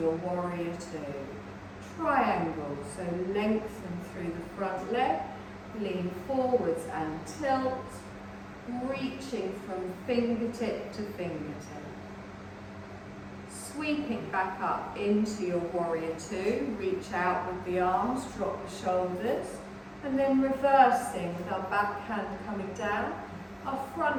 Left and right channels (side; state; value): both; identical; correlation 1.00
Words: warrior two. Triangle, so lengthen through the front leg, lean forwards and tilt, reaching from fingertip to fingertip. Sweeping back up into your warrior two, reach out with the arms, drop the shoulders. And then reversing with our back hand coming down, our